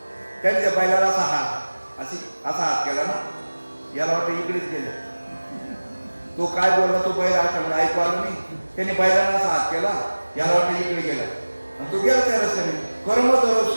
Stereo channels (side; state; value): both; inverted; correlation -1.00